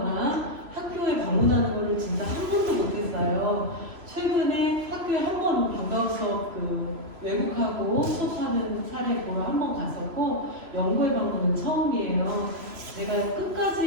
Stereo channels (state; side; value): late; left; 3.0 ms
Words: 학교에 방문하는 거를 진짜 한 번도 못했어요. 최근에 학교에 한 번 방과후 수업 외국하고 수업하는 사례 보러 한 번 갔었고 연구회 방문은 처음이에요. 제가